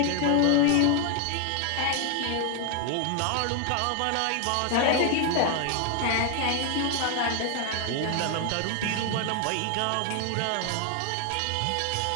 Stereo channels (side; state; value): both; different; correlation 0.00